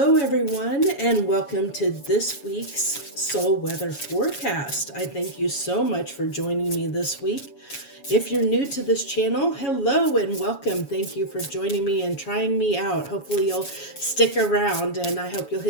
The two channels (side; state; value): right; late; 7.1 ms